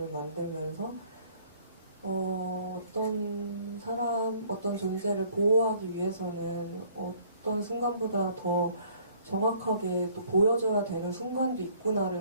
만들면서 어떤 사람, 어떤 존재를 보호하기 위해서는 어떤 순간보다 더 정확하게 또 보여줘야 되는 순간도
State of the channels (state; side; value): inverted; both; correlation -0.58